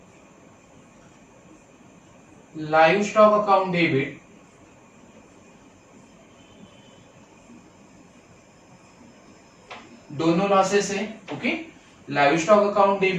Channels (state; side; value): identical; both; correlation 1.00